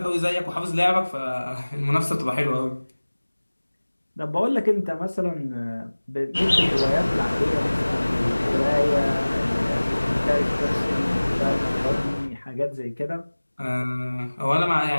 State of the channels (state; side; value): inverted; both; correlation -1.00